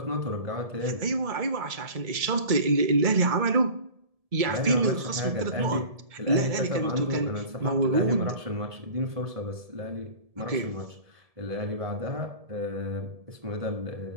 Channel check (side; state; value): left; late; 1.7 ms